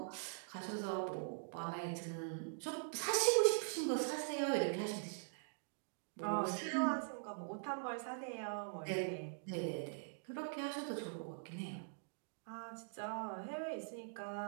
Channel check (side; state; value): left; silent; digital silence